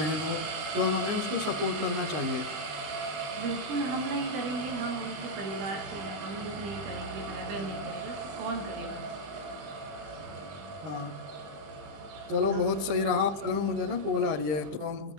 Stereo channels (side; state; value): left; late; 20 ms